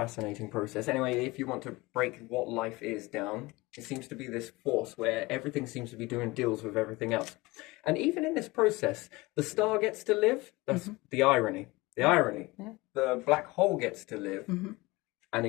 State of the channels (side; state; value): right; quieter; 22.1 dB